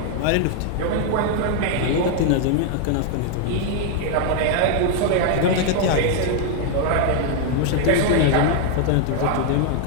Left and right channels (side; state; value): both; different; correlation 0.00